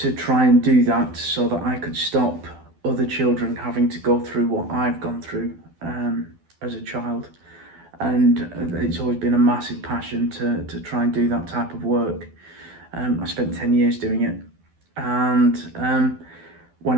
try and do that so that I could stop other children having to go through what I've gone through as a child. And it's always been a massive passion to try and do that type of work. I spent 10 years doing it. And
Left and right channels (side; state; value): left; late; 12 ms